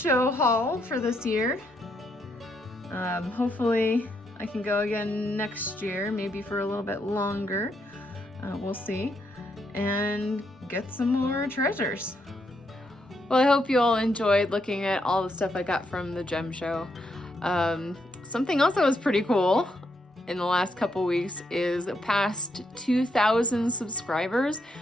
haul for this year. Hopefully I can go again next year, maybe for a little bit longer. We'll see, and get some more treasures. Well, I hope you all enjoyed looking at all the stuff I got from the gem show. Something else that was pretty cool in the last couple weeks is past 2,000 subscribers,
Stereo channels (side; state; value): both; normal; correlation 0.78